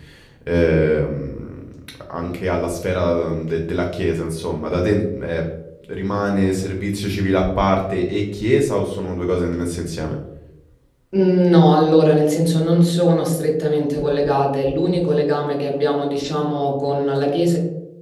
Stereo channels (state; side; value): identical; both; correlation 1.00